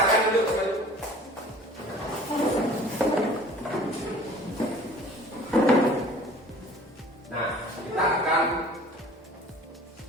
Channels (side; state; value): both; normal; correlation 0.47